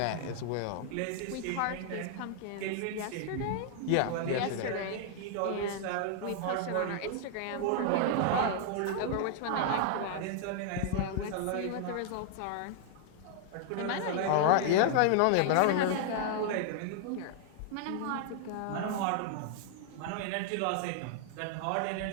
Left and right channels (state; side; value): different; both; correlation -0.01